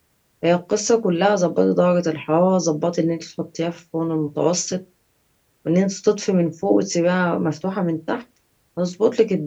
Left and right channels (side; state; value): both; identical; correlation 1.00